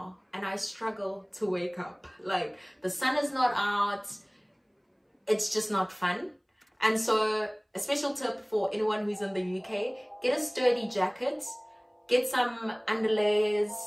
and I struggle to wake up. The sun is not out. It's just not fun. And so a special tip for anyone who's in the UK, get a sturdy jacket, get some underlayers,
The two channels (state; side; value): identical; both; correlation 1.00